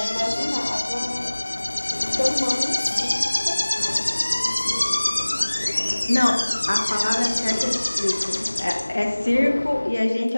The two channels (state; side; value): inverted; both; correlation -1.00